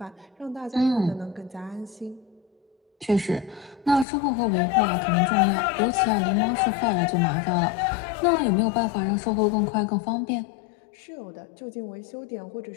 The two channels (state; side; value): drops out; right; at 4.0 s